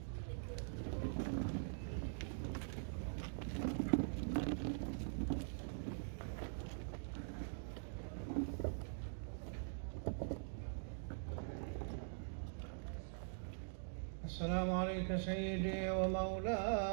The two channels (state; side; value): silent; left; digital silence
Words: السلام عليك سيدي